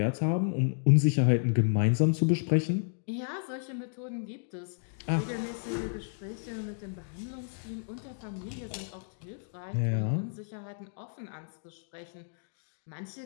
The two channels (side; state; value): right; silent; digital silence